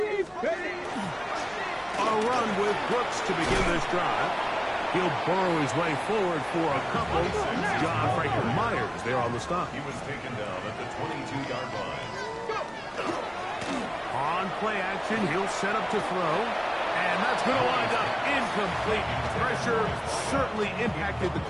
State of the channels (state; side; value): identical; both; correlation 1.00